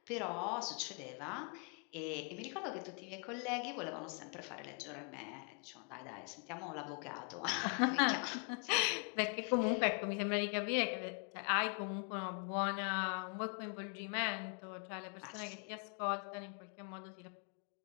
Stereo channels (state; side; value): quieter; right; 39.5 dB